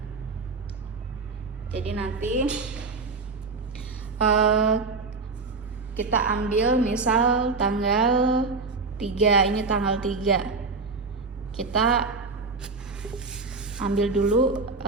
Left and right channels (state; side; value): quieter; left; 4.1 dB